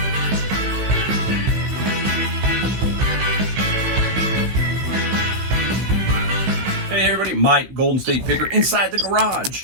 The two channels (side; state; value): left; late; 16 ms